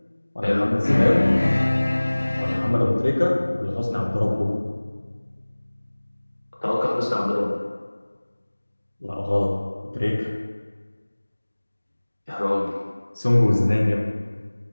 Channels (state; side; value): inverted; both; correlation -1.00